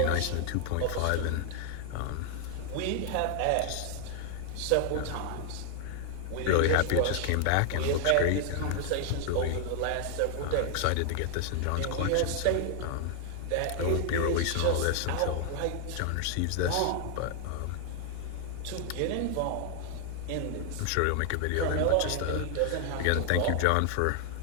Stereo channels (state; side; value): different; both; correlation 0.00